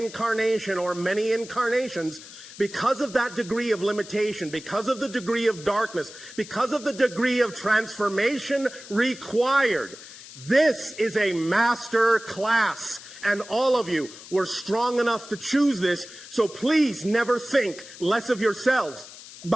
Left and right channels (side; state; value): left; noise; hiss, 16 dB below the sound